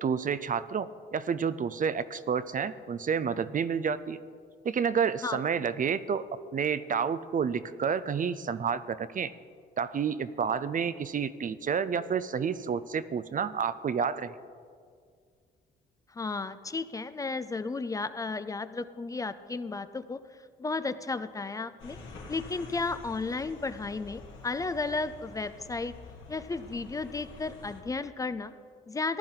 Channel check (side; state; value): left; quieter; 3.2 dB